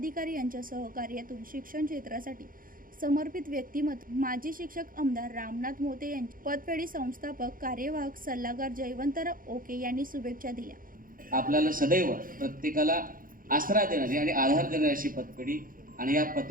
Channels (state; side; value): late; left; 0.40 ms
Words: यांच्या सहकार्यातून शिक्षण क्षेत्रासाठी समर्पित व्यक्तिमत्व माजी शिक्षक आमदार रामनाथ मोते यांचे पतपेढी संस्थापक कार्यवाहक सल्लागार जयवंतराव ओके यांनी शुभेच्छा दिल्या। आपल्याला सदैव प्रत्येकाला आसरा देणारी आणि आधार देणारी अशी पतपेढी आणि या